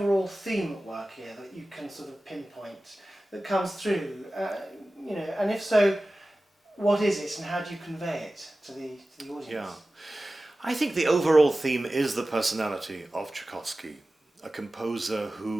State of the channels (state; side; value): normal; both; correlation 0.96